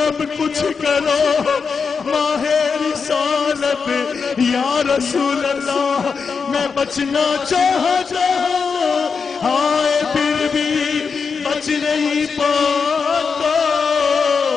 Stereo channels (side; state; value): right; quieter; 5.4 dB